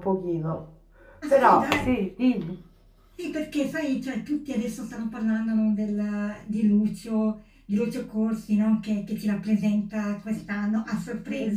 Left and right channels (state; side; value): identical; both; correlation 1.00